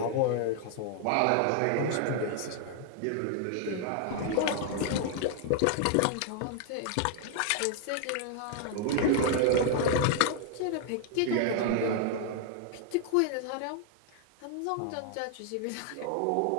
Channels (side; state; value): both; different; correlation 0.00